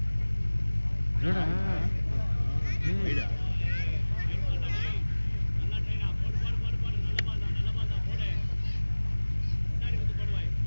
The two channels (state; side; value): inverted; both; correlation -1.00